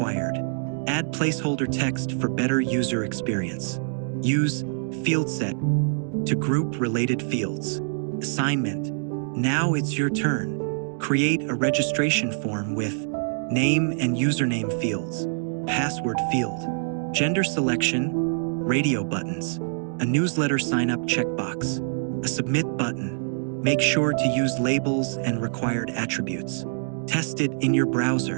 Add placeholder text for better user experience. Use field set to group related fields. Assignment. Now it's your turn. Create a registration form with name and username fields, password field, gender selection, radio buttons, a newsletter sign-up checkbox, a submit button. Make sure to use labels and required attributes. Test it in your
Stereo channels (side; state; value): left; silent; digital silence